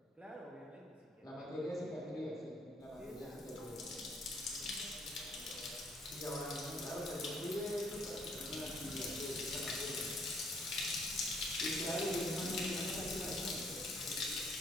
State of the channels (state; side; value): normal; both; correlation 0.66